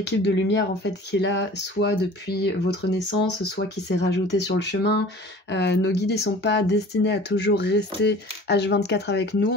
de lumière en fait qui est là, soit depuis votre naissance, soit qui s'est rajoutée sur le chemin. Nos guides ils sont pas destinés à toujours rester H24 avec nous.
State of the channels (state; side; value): normal; both; correlation 0.44